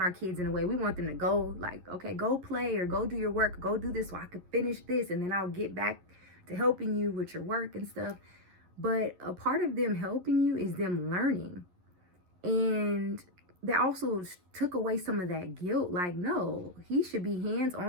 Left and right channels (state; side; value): late; left; 11 ms